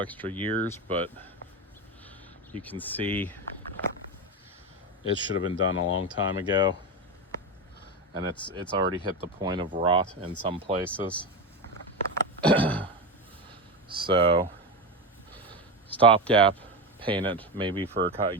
years, but you can see it should have been done a long time ago. And it's already hit the point of rot in some places. So stopgap, paint it maybe for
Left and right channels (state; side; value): normal; both; correlation 0.17